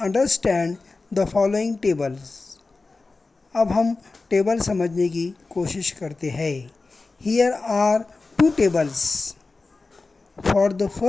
understand the following tables. अब हम टेबल समझने की कोशिश करते हैं। Here are two tables. For the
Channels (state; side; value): quieter; right; 3.7 dB